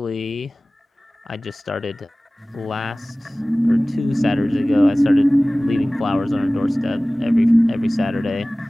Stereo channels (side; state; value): both; normal; correlation 0.98